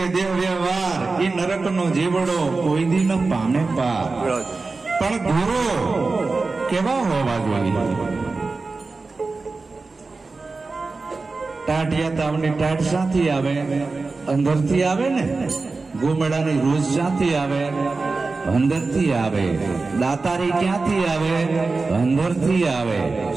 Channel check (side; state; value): left; quieter; 3.9 dB